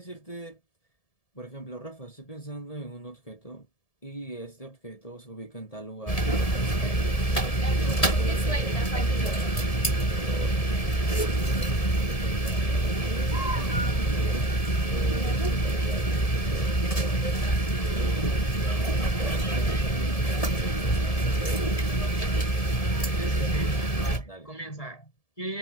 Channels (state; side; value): late; right; 1.7 ms